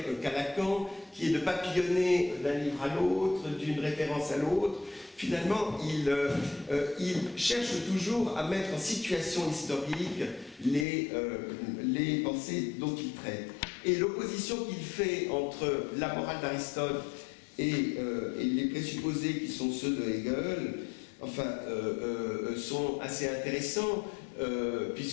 qu'a Lacan, qui est de papillonner d'un livre à l'autre, d'une référence à l'autre, finalement, il cherche toujours à mettre en situation historique les pensées dont il traite. Et l'opposition qu'il fait entre la morale d'Aristote et les présupposés qui sont ceux de Hegel, enfin, sont assez intéressants,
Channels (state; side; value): drops out; right; at 10.9 s